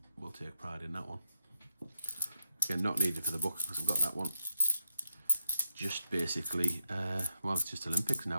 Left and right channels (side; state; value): both; inverted; correlation -0.87